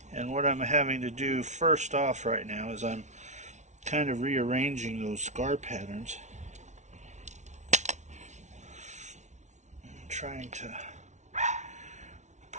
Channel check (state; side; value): late; left; 0.34 ms